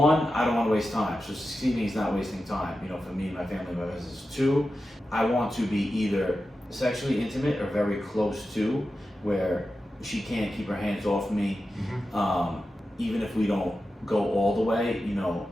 I don't want to waste time. So succeeding is not wasting time, for me and my family, my business. 2, I want to be either sexually intimate or very close to, where she can't keep her hands off me. Even if we don't go all the way,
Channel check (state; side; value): normal; both; correlation 0.92